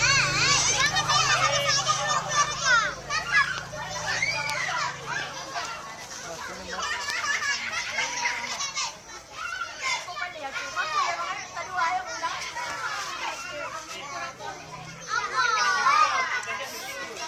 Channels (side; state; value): both; identical; correlation 1.00